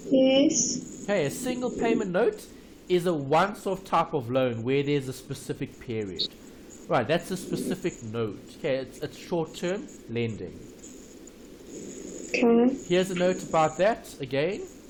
Yes. Okay, a single payment note is a once-off type of loan where there's a specific period. Right, that's a specific note. Okay, it's short-term lending. Okay. Here's a note about that again.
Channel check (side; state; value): both; identical; correlation 1.00